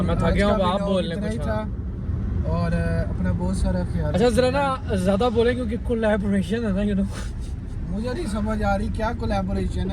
मैं थक गया हूँ, आप बोल लें इतना ही कुछ। था। और अपना बहुत सारा ख्याल। अच्छा ज़रा ना ज़्यादा बोले क्योंकि कोलैबोरेशन है ना, यू नो। मुझे नहीं समझ आ रही क्या कोलैबोरेशन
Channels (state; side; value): identical; both; correlation 1.00